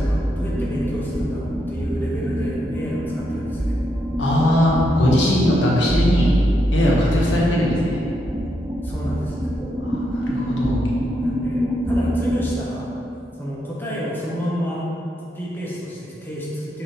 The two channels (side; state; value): both; normal; correlation 0.81